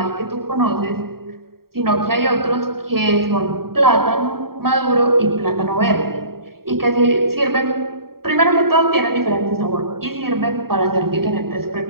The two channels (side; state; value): left; late; 0.94 ms